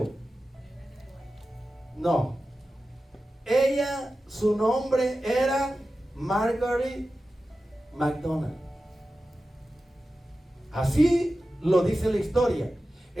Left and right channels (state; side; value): normal; both; correlation 0.94